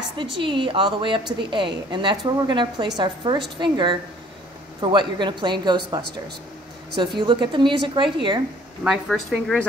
the G all the way up to the A, and that's where we're going to place our first finger for what you're going to play in Ghostbusters. So if you look at the music right here, my first finger is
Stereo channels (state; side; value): normal; both; correlation 0.56